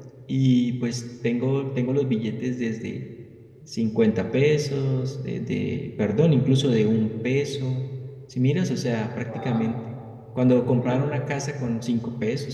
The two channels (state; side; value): identical; both; correlation 1.00